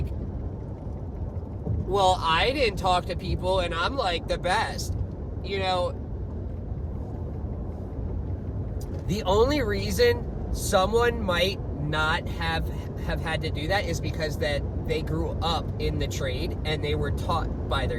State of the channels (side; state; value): both; identical; correlation 1.00